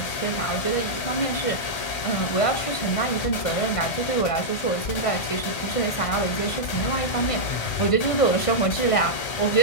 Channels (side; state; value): right; late; 1.5 ms